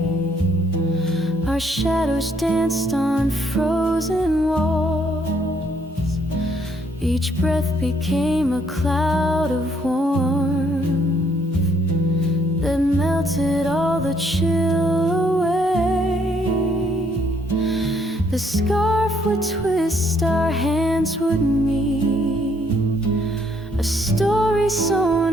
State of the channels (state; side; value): normal; both; correlation 0.68